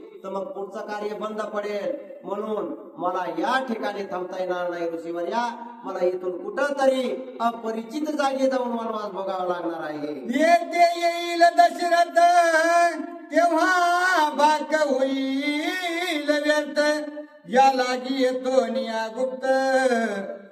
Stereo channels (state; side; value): identical; both; correlation 1.00